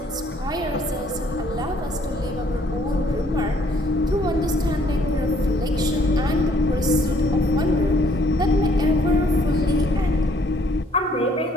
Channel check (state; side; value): normal; both; correlation 0.64